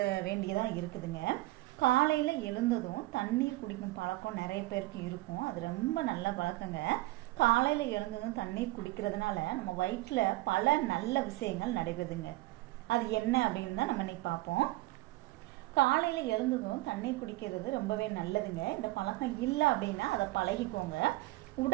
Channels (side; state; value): left; quieter; 19.9 dB